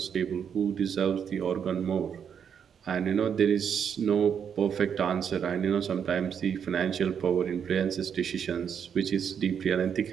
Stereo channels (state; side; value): quieter; left; 7.7 dB